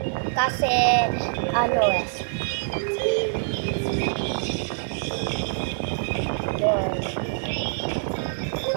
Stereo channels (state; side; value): silent; left; 62 dB below the other